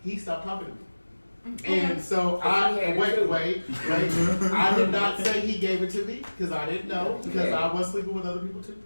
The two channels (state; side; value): inverted; both; correlation -1.00